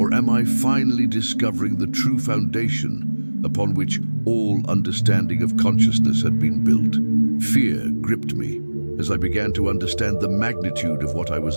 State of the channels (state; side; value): inverted; both; correlation -1.00